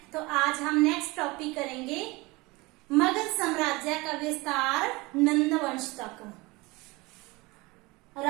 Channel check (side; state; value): left; quieter; 23.5 dB